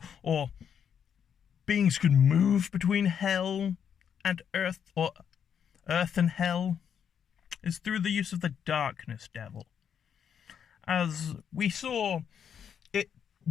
or beings could move between hell and earth, or earth and hell, is through the use of the Darkness Devil. As we saw, it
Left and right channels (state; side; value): quieter; right; 8.0 dB